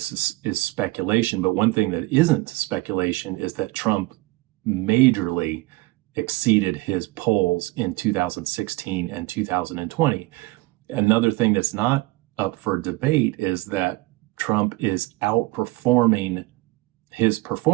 is speculation. But one thing that isn't speculation is that Trump majorly exceeded his polls in 2016 and 2020. Another thing that's not up for debate is that Trump is outperforming his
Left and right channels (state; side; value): quieter; left; 21.2 dB